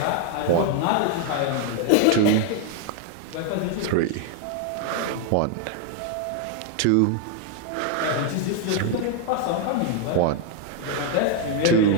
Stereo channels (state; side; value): different; both; correlation 0.01